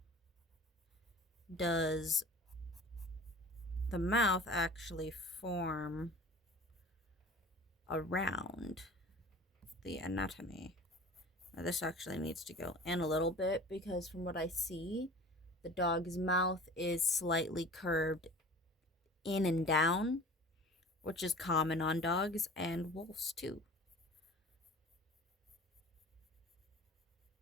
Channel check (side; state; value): both; normal; correlation 0.42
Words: does the mouth actually form around the anatomy. Now this actually needs to go in a little bit because from what I see, the dog's mouth is slightly curved in and down, which is common on dogs and wolves too.